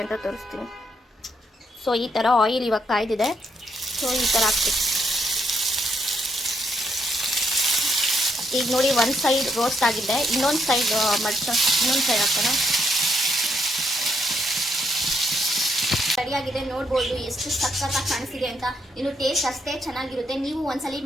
ಅಂತ ತೋರಿಸ್ತೀನಿ. ಸೊ ಈ ಥರ ಆಯಿಲ್ ಇವಾಗ ಕಾಯ್ದಿದೆ. ಸೊ ಈ ಥರ ಹಾಕ್ತೀನಿ. ಈಗ ನೋಡಿ ಒಂದು ಸೈಡ್ ರೋಸ್ಟ್ ಆಗಿದೆ. ಇನ್ನೊಂದು ಸೈಡ್ ಇನ್ನೊಂದು ಸೈಡ್ ಹಾಕೋಣ. ರೆಡಿಯಾಗಿದೆ ನೋಡ್ಬೋದು ಎಷ್ಟು ಸಖತ್ತಾಗಿ ಕಾಣಿಸ್ತಿದೆ ಅಂತ. ಇನ್ನು ಟೇಸ್ಟ್ ಅಷ್ಟೇ ಚೆನ್ನಾಗಿರುತ್ತೆ. ನೀವು ಒಂದ್ಸಲಿ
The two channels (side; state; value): both; normal; correlation 0.75